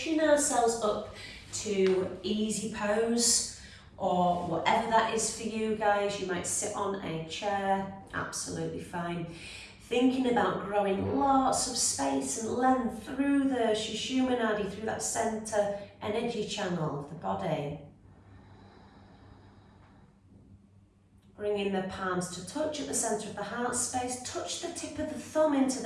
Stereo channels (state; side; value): identical; both; correlation 1.00